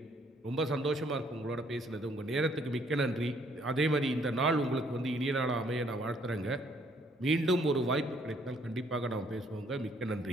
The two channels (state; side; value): normal; both; correlation 0.65